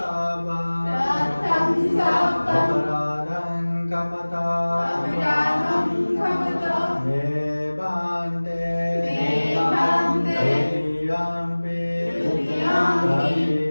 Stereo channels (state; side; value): inverted; both; correlation -1.00